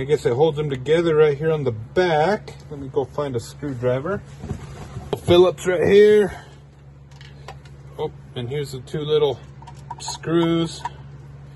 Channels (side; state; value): both; identical; correlation 1.00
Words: guess it holds them together right here on the back. Let me go find a screwdriver. Phillips right here. Oh, and here's the 2 little screws.